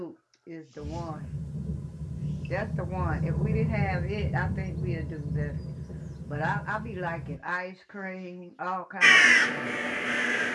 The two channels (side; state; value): both; identical; correlation 1.00